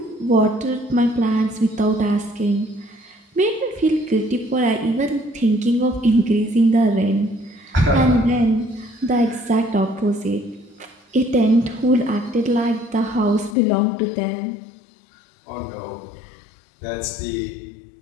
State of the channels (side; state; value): right; drops out; at 13.6 s